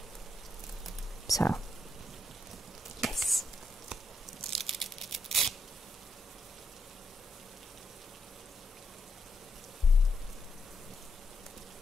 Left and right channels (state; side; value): normal; both; correlation 0.80